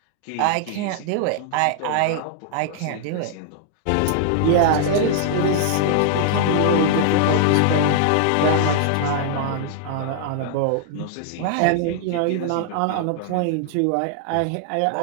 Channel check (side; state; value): both; different; correlation -0.01